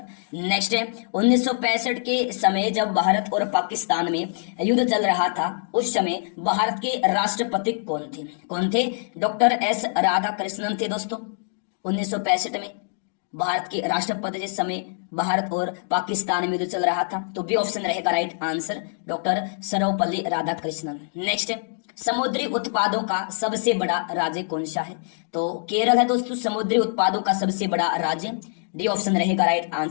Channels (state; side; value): silent; right; digital silence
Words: नेक्स्ट है 1965 के समय जब भारत और पाकिस्तान में युद्ध चल रहा था, उस समय भारत के राष्ट्रपति कौन थे? कौन थे? डॉक्टर एस राधाकृष्णन थे दोस्तों। 1965 में भारत के राष्ट्रपति जिस समय भारत और पाकिस्तान में युद्ध चल रहा था, तो बी ऑप्शन रहेगा right answer, doctor Sarvepalli Radhakrishnan. Next है समुद्री उत्पादों का सबसे बड़ा राज्य कौन सा है? तो केरल है दोस्तों समुद्री उत्पादों का सबसे बड़ा राज्य, डी ऑप्शन रहेगा राइट